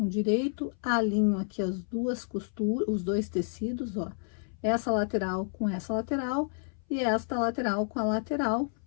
direito, alinho aqui as duas costuras, os dois tecidos, ó. Essa lateral com essa lateral e esta lateral com a lateral.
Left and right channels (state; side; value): silent; right; 57 dB below the other